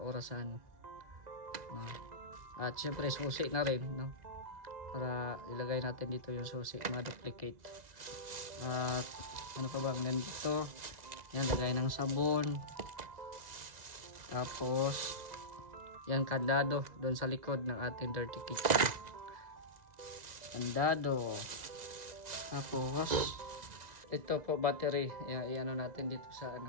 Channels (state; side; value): late; left; 1.9 ms